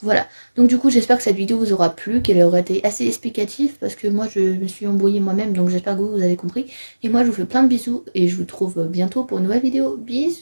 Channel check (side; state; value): both; inverted; correlation -1.00